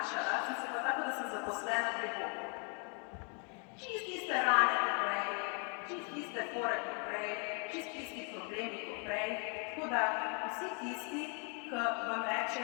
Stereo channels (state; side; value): quieter; right; 37.8 dB